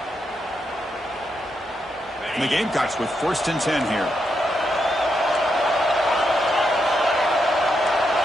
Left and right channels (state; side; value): normal; both; correlation 0.82